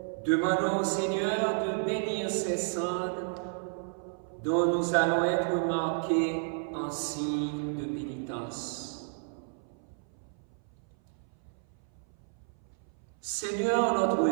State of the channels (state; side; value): silent; left; 57 dB below the other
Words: demandons au Seigneur de bénir ces cendres dont nous allons être marqués en signe de pénitence. Seigneur notre